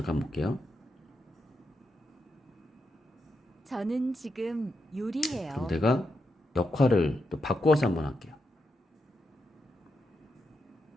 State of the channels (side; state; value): both; normal; correlation 0.84